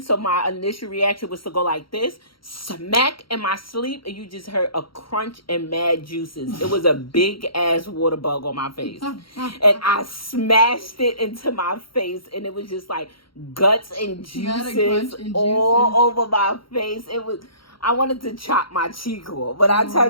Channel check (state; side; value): late; right; 0.74 ms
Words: So my initial reaction was to go like this, smack in my sleep, and you just heard a crunch and mad juices. It was a big ass water bug on my face. And I smashed it into my face, and it was just like guts and juices all over my face. It was, I wanted to chop my cheek off. But I